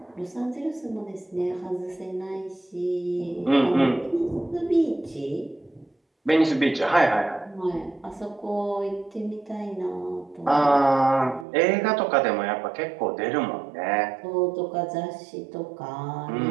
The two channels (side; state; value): left; drops out; at 11.5 s